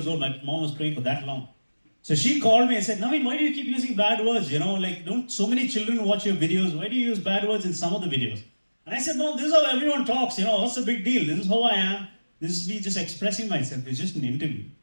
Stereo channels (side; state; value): both; inverted; correlation -1.00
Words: old. My mom was praying for that long. So she called me and said, Naveen, why do you keep using bad words? You know, like, don't so many children watch your videos. Why do you use bad words in some of the videos? And I said, Mom, this is how everyone talks. You know, what's the big deal? This is how I am. This is me just expressing myself. It's just an interview.